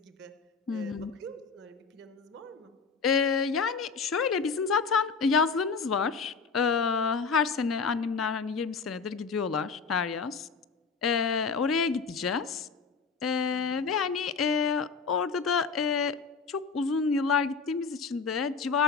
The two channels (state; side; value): quieter; right; 5.2 dB